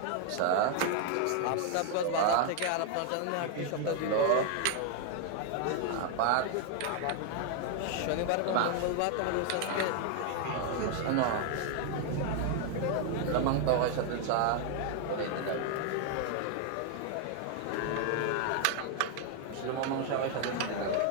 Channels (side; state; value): both; different; correlation 0.00